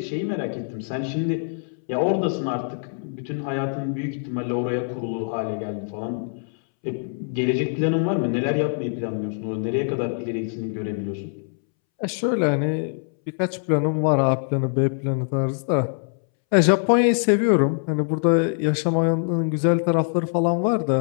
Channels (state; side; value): silent; right; 63 dB below the other